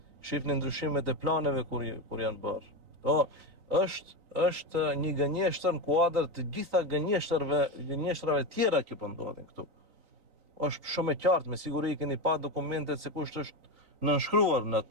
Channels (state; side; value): late; left; 3.9 ms